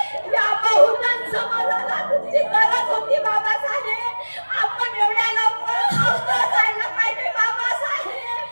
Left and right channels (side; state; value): both; inverted; correlation -1.00